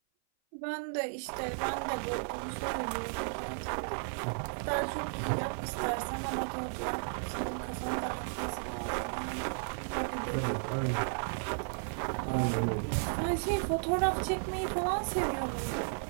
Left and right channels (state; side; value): silent; left; 55 dB below the other